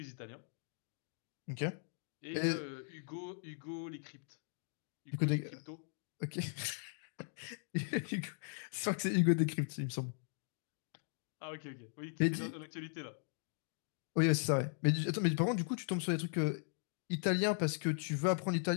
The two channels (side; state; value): right; silent; digital silence